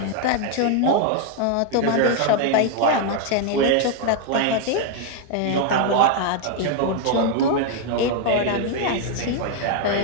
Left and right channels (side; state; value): both; different; correlation 0.00